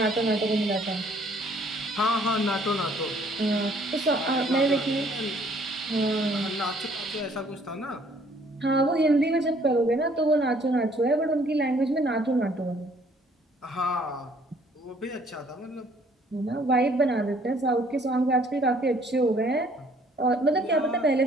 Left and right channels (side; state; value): both; normal; correlation 0.61